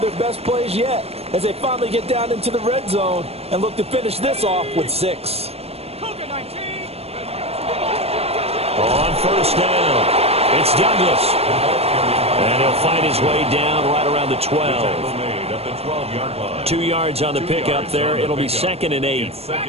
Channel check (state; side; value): late; left; 0.29 ms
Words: their best plays yet as they finally get down into the red zone and look to finish this off with 6. Cougar 19! On first down, it's Douglas. And he'll find his way down right around the 12. 2 yards on the pickup there. It'll be 2nd and 8.